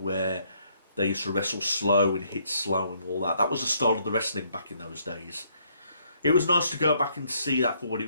they used to wrestle slow and hit slow and all that. That was the style of the wrestling back in those days. It was nice to go back and see that for what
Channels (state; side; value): inverted; both; correlation -0.70